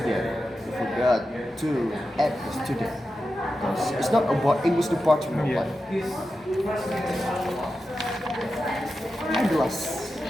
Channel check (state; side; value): normal; both; correlation 0.91